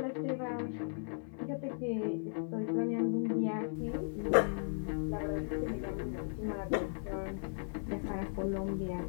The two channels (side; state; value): right; silent; digital silence